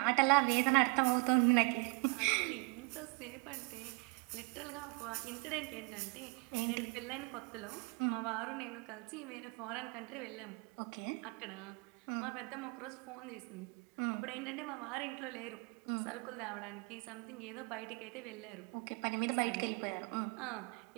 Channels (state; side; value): quieter; left; 31.9 dB